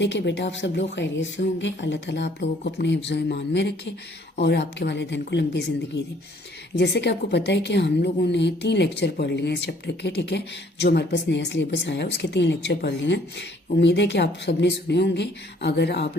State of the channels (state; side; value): normal; both; correlation 0.60